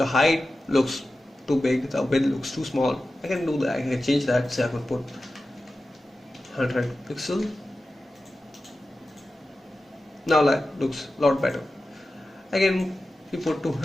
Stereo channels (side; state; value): both; normal; correlation 0.94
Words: height looks too big, the width looks too small. I can do that. I can change that. Say I can put 100 pixel. Now that looks a lot better. I can put